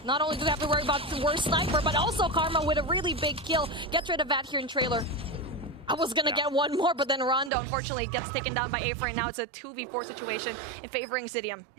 Not only do we have to worry about the Worst Sniper, but also Karma with a really big kill. Gets rid of Vat here in trailer. I was going to get one more, but then Rondo, unfortunately, gets taken down by Afer. And now it's a 2v4 situation in favoring Zidium.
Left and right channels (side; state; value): left; drops out; at 7.5 s